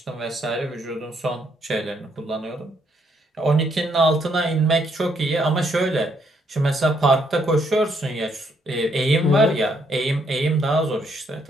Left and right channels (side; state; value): both; normal; correlation 0.72